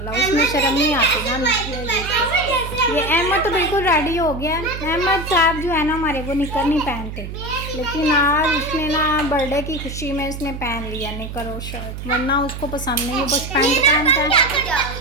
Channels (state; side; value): noise; right; hum, 8 dB below the sound